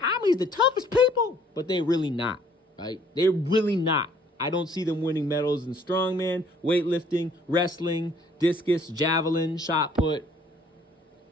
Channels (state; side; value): normal; both; correlation 0.60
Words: I'm the toughest people. But they're really not, right? They're really not. I don't see them winning medals in strongman, weightlifting, wrestling, discus, javelin, shot put.